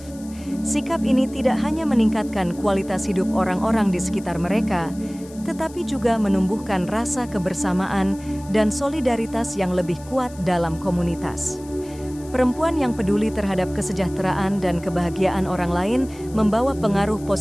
Sikap ini tidak hanya meningkatkan kualitas hidup orang-orang di sekitar mereka, tetapi juga menumbuhkan rasa kebersamaan dan solidaritas yang lebih kuat dalam komunitas. Perempuan yang peduli terhadap kesejahteraan dan kebahagiaan orang lain membawa pengaruh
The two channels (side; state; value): left; noise; hiss, 22 dB below the sound